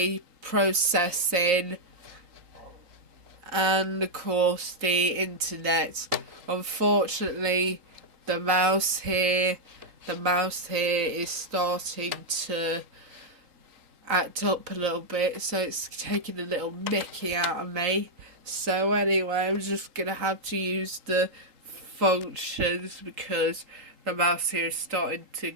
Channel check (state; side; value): late; left; 3.8 ms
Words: processing, and of course the internet. Unfortunately, the mouse here is starting to act up a little bit, so it's taking a little mickey out of me. So anyway, I'm just going to have to use the functions because the mouse here is starting to